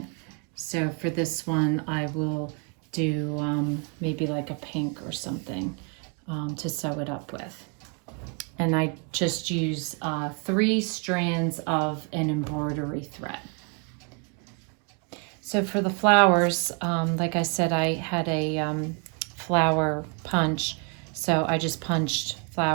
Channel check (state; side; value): quieter; left; 35.9 dB